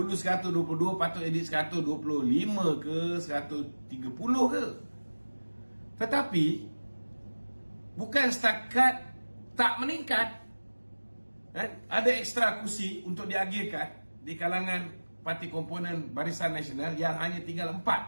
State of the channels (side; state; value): both; inverted; correlation -1.00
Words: 122, patut jadi 125 ke 130 ke. Tetapi bukan setakat tak meningkat, ada ekstra kursi untuk diagihkan di kalangan parti komponen Barisan Nasional yang hanya tinggal